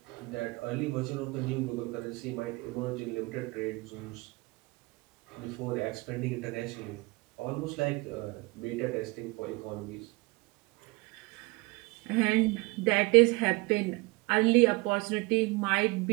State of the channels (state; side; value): quieter; left; 25.1 dB